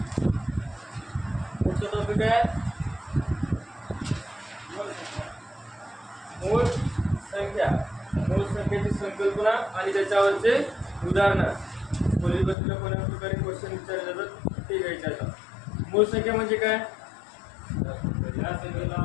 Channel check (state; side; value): drops out; right; at 12.6 s